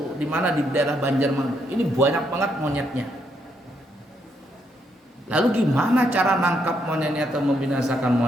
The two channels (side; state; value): both; normal; correlation 0.76